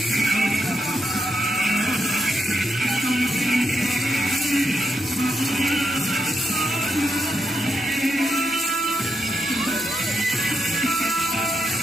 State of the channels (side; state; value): left; noise; hum, 27 dB below the sound